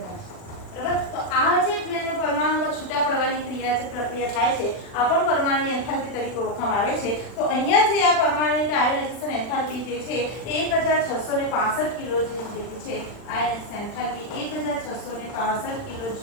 બરાબર, તો આ જે પરમાણુમાં છૂટા પડવાની ક્રિયા છે પ્રક્રિયા થાય છે આ પણ પરમાણુની એન્થાલ્પી તરીકે ઓળખવામાં આવે છે. તો અહીંયા જે આ પરમાણુની આયોનાઇઝેશન એન્થાલ્પી જે છે 1665 કિલો જેટલી છે. આયોનાઇઝેશન એન્થાલ્પી 1665 કિલો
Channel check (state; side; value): late; right; 39 ms